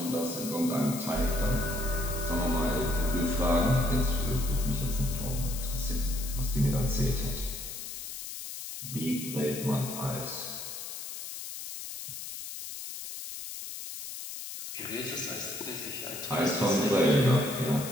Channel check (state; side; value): noise; left; hiss, 8 dB below the sound